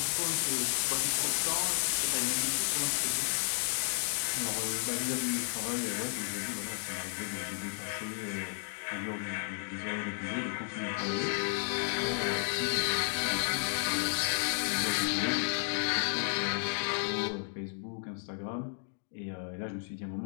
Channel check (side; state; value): right; silent; digital silence